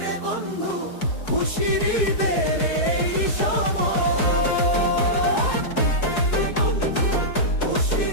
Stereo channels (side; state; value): right; late; 4.7 ms